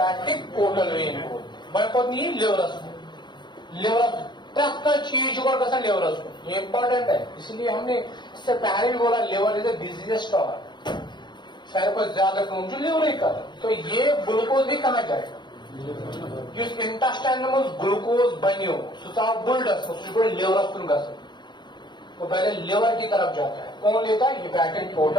पोर्टल वेन बोलते हैं. मैं नहीं लिवर प्रत्येक चीज को कैसा लिवर, ये इंपॉर्टेंट है. इसलिए हमने इससे पहले भी बोला liver is a busiest organ. सारे को ज्यादा कम लिवर कर। तो ये ग्लूकोज भी कहाँ जाएगा? इस इंटेस्टाइन में ग्लूकोज बनो सह बुल्डस लिवरस कुन गसन, वो पहले लिवर की तरफ जाता है। कौन लेता है? Hepatic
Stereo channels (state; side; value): late; right; 0.22 ms